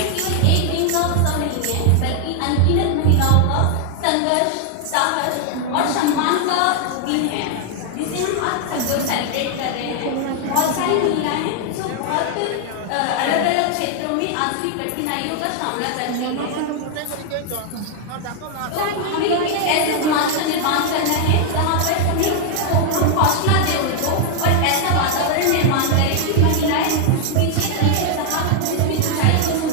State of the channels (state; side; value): different; both; correlation 0.00